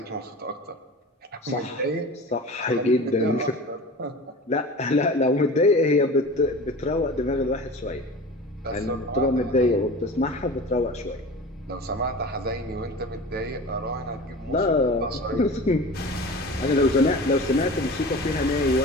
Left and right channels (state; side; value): normal; both; correlation 0.35